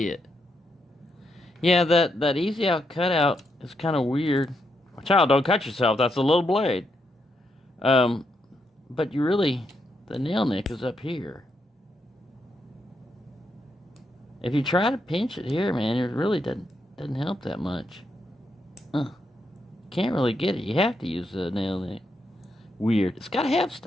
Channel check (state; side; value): normal; both; correlation 0.80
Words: it. Yeah, that easy out cutout is kind of weird. Child, don't cut yourself. That's a little blade. But the nail nick is up here. If you try to pinch it here, man, it really doesn't help that much. Can't really get it. You have to use the nail nick. Weird. It's got a half